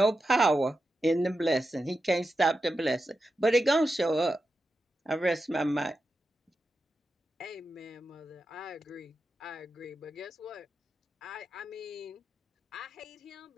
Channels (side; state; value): both; normal; correlation 0.90